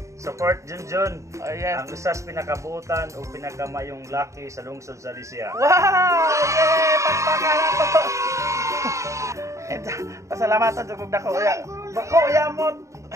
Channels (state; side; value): late; left; 0.15 ms